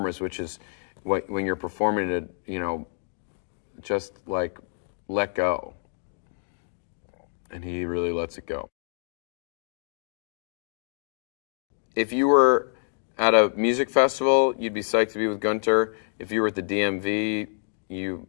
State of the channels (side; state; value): right; silent; 60 dB below the other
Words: which is when you're performing to, just like let go. And he really lets it go. If you were at a music festival, you'd be psyched to be with Gunter. If you were at the DMV,